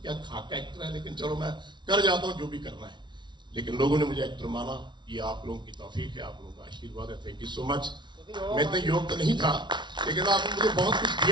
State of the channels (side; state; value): left; late; 0.22 ms